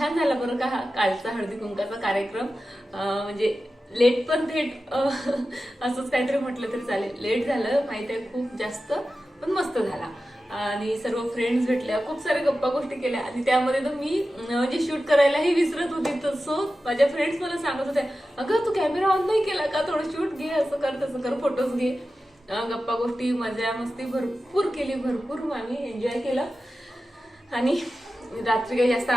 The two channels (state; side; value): normal; both; correlation 0.93